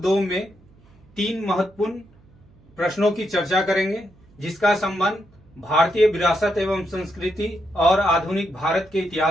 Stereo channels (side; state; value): right; noise; hum, 29 dB below the sound